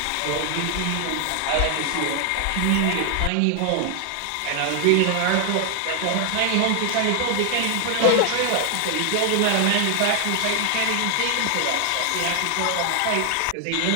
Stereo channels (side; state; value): both; different; correlation 0.00